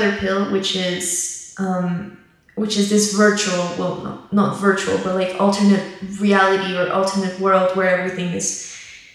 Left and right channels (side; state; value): both; identical; correlation 1.00